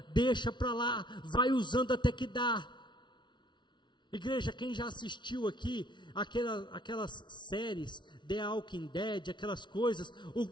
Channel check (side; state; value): right; late; 0.23 ms